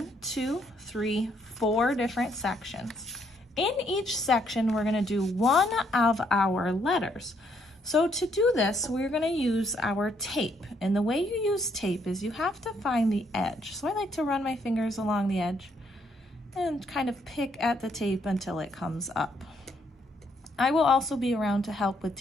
2, 3, 4 different sections. In each section, we're going to do one of our letters. So to do this, we're going to use our tape. And the way you use tape is you have to find the edge. So I like to run my fingers along the edge and kind of pick at the tape until it comes up. I will also be around to help with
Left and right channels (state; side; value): normal; both; correlation 0.71